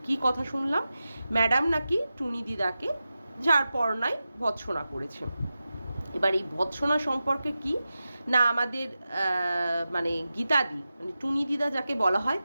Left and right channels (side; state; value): both; inverted; correlation -0.93